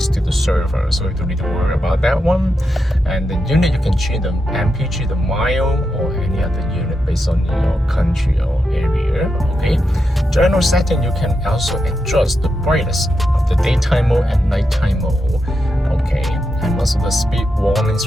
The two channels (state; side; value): normal; both; correlation 0.86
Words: to the server, so you don't need to worry about that one. And the unit, you can change the mpg, the mile, or any other unit based on your country or area. Okay, general setting, you can also adjust the brightness of the daytime mode and nighttime mode. Okay, and also the speed warning